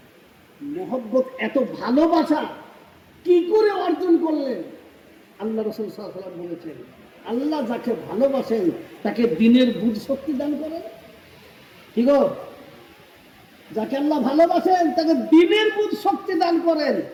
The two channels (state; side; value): identical; both; correlation 1.00